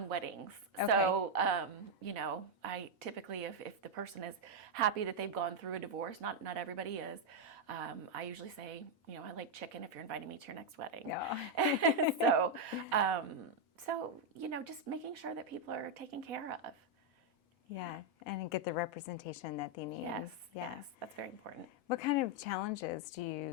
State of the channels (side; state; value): both; normal; correlation 0.00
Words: weddings. Okay. So I typically, if the person is happy that they've gone through a divorce, not everybody is, I usually say, I like chicken if you're inviting me to your next wedding. Yeah. So just making sure that people are taken care of. Yeah, and get the representation that they need. Yes, that's very important. What kind of challenges do